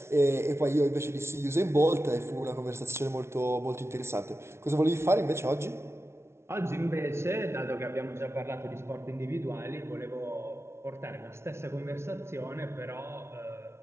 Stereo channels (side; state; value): left; late; 0.13 ms